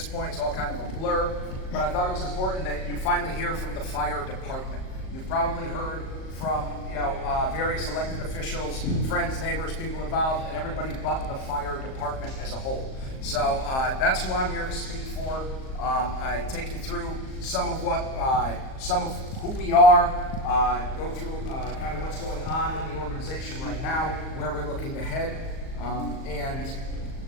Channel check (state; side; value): late; right; 38 ms